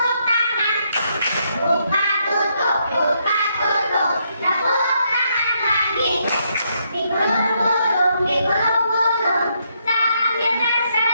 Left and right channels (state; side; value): inverted; both; correlation -0.76